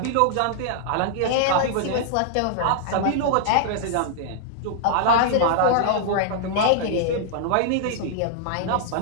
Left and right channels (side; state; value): both; different; correlation -0.01